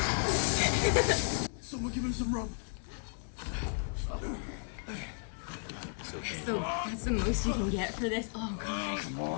Someone give him some rum. So that's the most you can get for this? Oh, God. come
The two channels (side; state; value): right; silent; 55 dB below the other